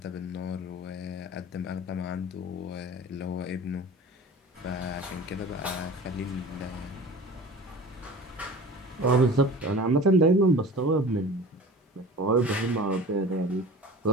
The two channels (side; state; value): both; normal; correlation 0.39